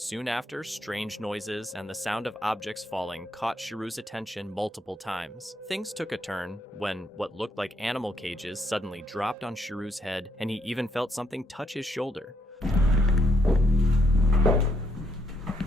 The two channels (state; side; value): normal; both; correlation 0.73